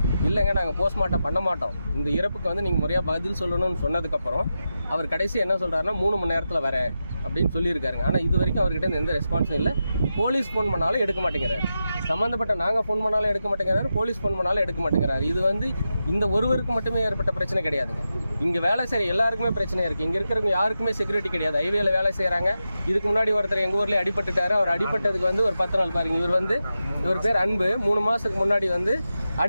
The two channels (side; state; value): both; inverted; correlation -0.90